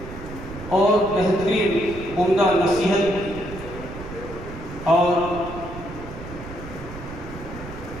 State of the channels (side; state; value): right; noise; rumble, 12 dB below the sound